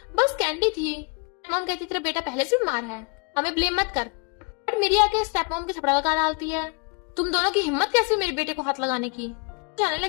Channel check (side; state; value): right; quieter; 33.8 dB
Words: बस कैंडी थी। मॉम कहती तेरा बेटा पहले से बीमार है, हमें ब्लेम मत कर। बट मेरी आके स्टेप मॉम के थपड़ा लगा डालती है, तुम दोनों की हिम्मत कैसी मेरे बेटे को हाथ लगाने की। जाने